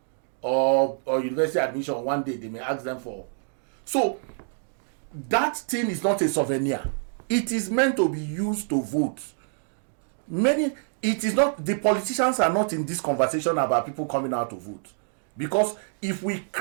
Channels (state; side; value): silent; left; digital silence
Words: or university admission one day, they may ask them for. So that thing is not a souvenir. It is meant to be used to vote. It is not, the politicians are not in this conversation about people coming out to vote. Because if we